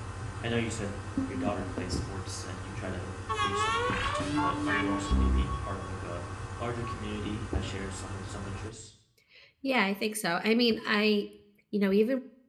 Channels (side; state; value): both; identical; correlation 1.00